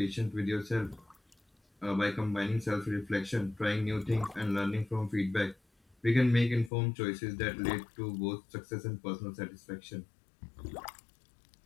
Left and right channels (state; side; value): drops out; right; at 6.7 s